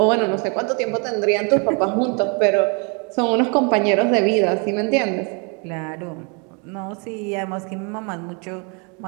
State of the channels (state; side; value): quieter; left; 34.7 dB